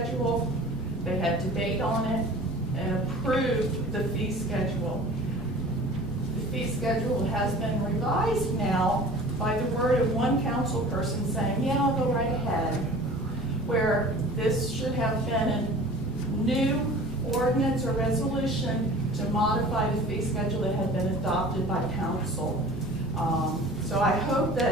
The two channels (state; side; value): normal; both; correlation 0.43